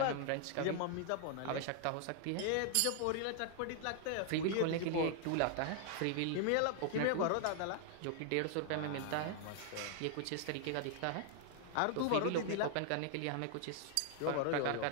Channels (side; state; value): both; different; correlation 0.00